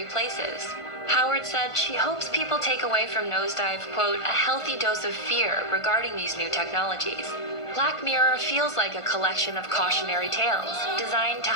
places. Howard said she hopes people take away from Nosedive, quote, a healthy dose of fear regarding these new technologies. Black Mirror feels like a collection of cautionary tales, designed to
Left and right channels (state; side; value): late; right; 1.5 ms